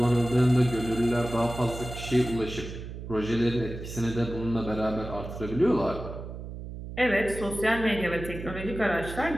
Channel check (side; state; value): right; noise; hum, 9 dB below the sound